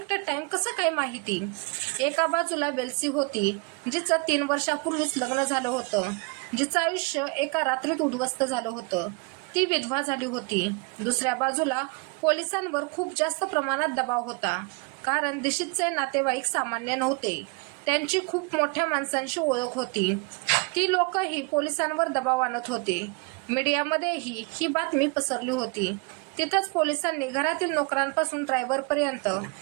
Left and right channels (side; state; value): left; quieter; 30.2 dB